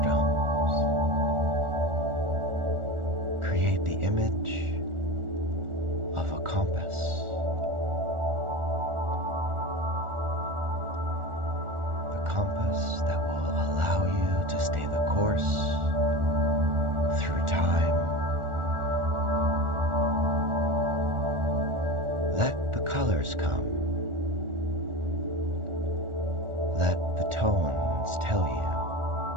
create the image of a compass. The compass that will allow you to stay the course through time. Let the colors come. Let the tones tell you.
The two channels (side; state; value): left; late; 1.4 ms